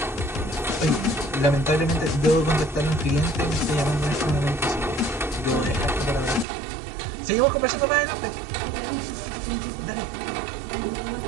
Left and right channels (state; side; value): drops out; left; at 6.5 s